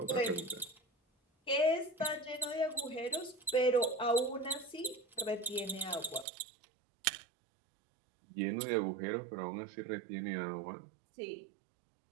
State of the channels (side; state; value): left; drops out; at 6.2 s